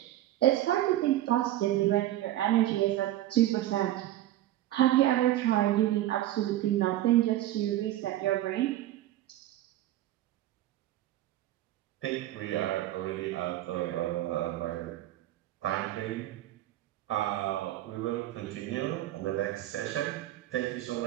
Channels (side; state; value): left; quieter; 14.3 dB